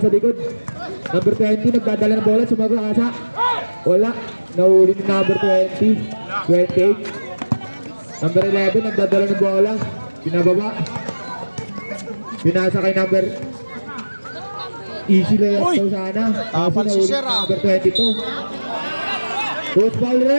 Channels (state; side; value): inverted; both; correlation -1.00